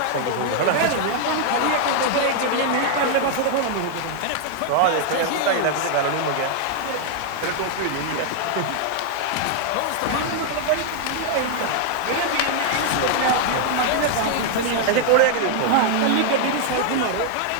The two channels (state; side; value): different; both; correlation 0.00